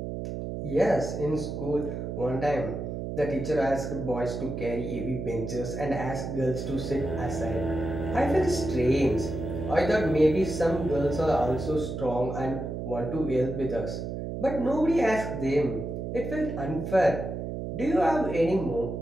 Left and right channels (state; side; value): noise; right; hum, 5 dB below the sound